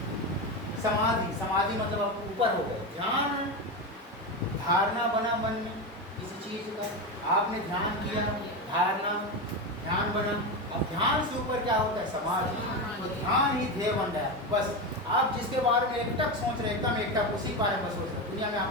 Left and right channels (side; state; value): both; normal; correlation 0.17